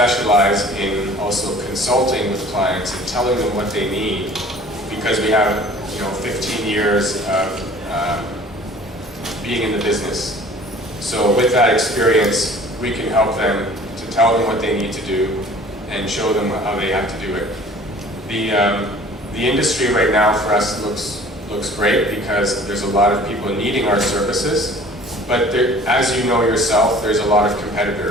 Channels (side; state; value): both; normal; correlation 0.48